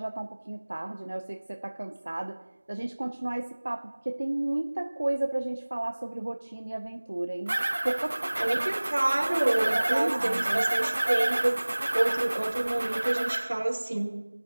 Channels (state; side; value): inverted; both; correlation -1.00